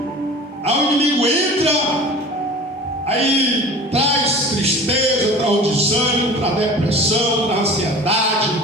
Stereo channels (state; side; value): normal; both; correlation 0.40